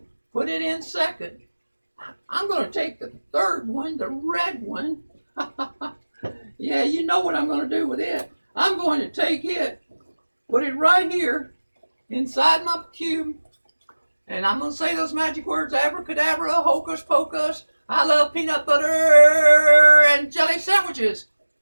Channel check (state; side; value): inverted; both; correlation -1.00